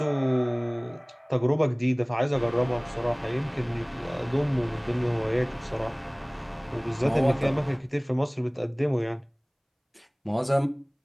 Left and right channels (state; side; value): identical; both; correlation 1.00